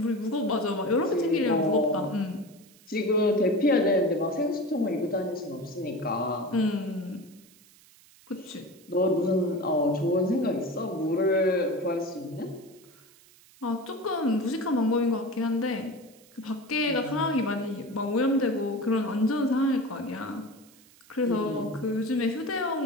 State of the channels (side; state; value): right; noise; hiss, 26 dB below the sound